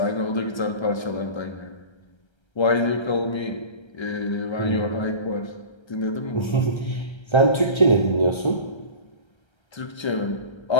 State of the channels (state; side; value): late; right; 1.3 ms